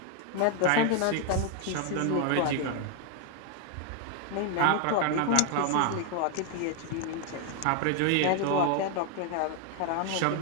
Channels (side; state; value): both; different; correlation 0.01